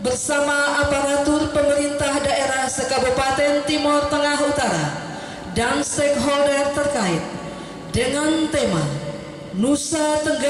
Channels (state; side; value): identical; both; correlation 1.00